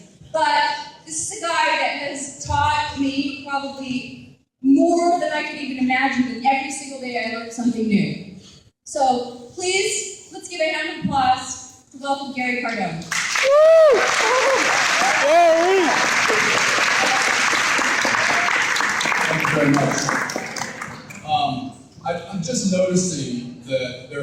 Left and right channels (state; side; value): identical; both; correlation 1.00